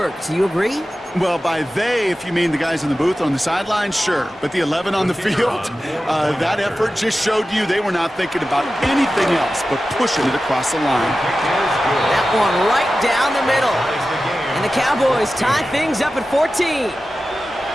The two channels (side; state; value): both; normal; correlation 0.94